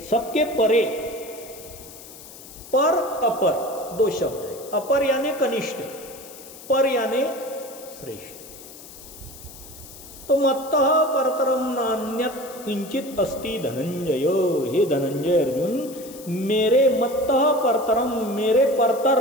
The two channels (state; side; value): noise; left; hiss, 17 dB below the sound